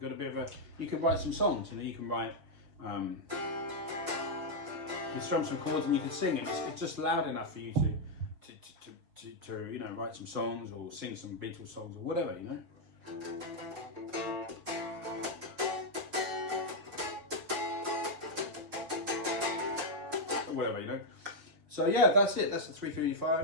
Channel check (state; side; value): late; left; 5.4 ms